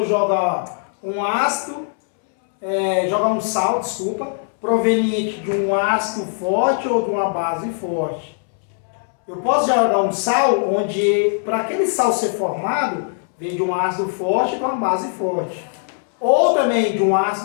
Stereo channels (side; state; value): right; silent; 65 dB below the other